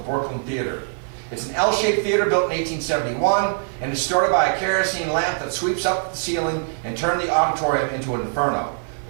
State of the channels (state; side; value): silent; left; digital silence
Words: Theater. It's an L-shaped theater built in 1871 and is started by a kerosene lamp that sweeps up the ceiling and turned the auditorium into an inferno.